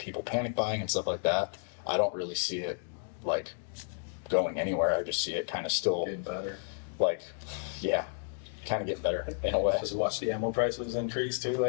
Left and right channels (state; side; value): silent; right; digital silence